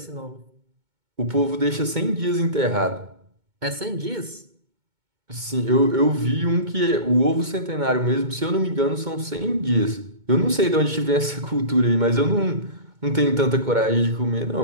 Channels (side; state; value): left; late; 2.2 ms